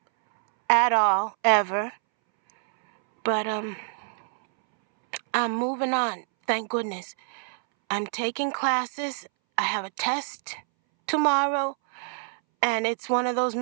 at all, ever. But I'm moving on, thank goodness. I'm taking classes. I have a test tomorrow. And it's one of those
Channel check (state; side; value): silent; left; 61 dB below the other